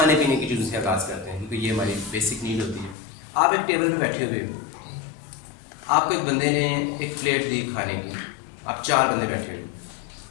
पीने की चीज़ों से आगाज़ करते हैं क्योंकि ये हमारी बेसिक नीड होती है। आप एक टेबल पे बैठे हुए हो, आपको एक बंदे ने एक प्लेट दी खाने की, आप 4 बंदे बैठे हो।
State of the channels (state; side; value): drops out; right; at 3.0 s